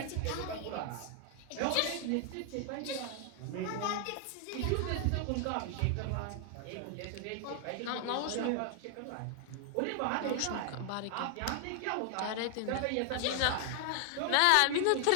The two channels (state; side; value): different; both; correlation 0.00